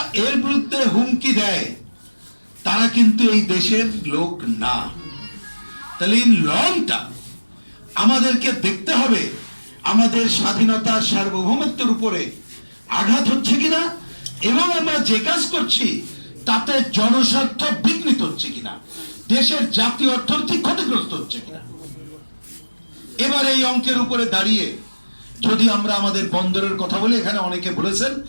এর বিরুদ্ধে হুমকি দেয় তারা কিন্তু এই দেশের লোক না। তাহলে ইন লং টার্ম আমাদেরকে দেখতে হবে আমাদের স্বাধীনতা, সার্বভৌমত্বের উপরে আঘাত হচ্ছে কিনা এবং আমরা যে কাজ করছি তাতে জনস্বার্থ বিঘ্নিত হচ্ছে কিনা, দেশের জাতীয় অর্থনীতি ক্ষতিগ্রস্ত হচ্ছে কিনা। এবার এই অঙ্কের উপরে দাঁড়িয়ে যদি আমরা আমাদের বন্দরের কথা বলি, এখানে অনেকে বলেছেন,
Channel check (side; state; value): both; inverted; correlation -1.00